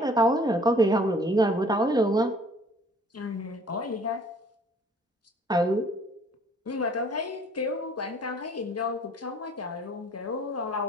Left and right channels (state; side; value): normal; both; correlation 0.56